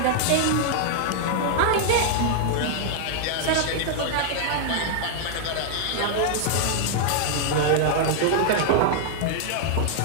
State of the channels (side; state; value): both; different; correlation -0.01